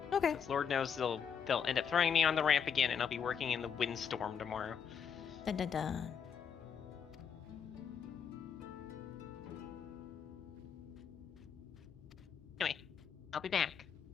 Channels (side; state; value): right; quieter; 7.2 dB